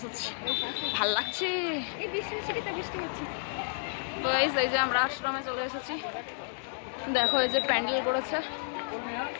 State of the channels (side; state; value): right; silent; digital silence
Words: ভাল লাগছে। তো গাইস এই যে আমরা আশ্রমে চলে এসেছি, দেখো এই যে প্যান্ডেল করেছে,